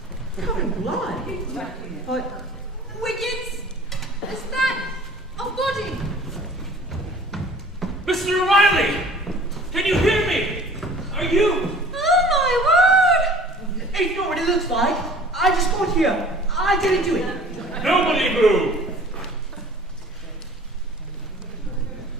Covered in blood? But... Wiggins! Is that a body? Mr. O'Reilly! Can you hear me? Are you? Oh my word! It's not what it looks like. I just got here. I didn't do it. Nobody move!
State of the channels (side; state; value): both; normal; correlation 0.48